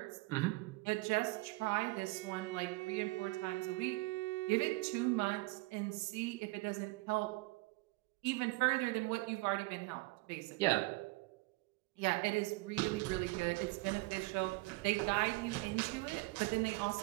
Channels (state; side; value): quieter; left; 23.2 dB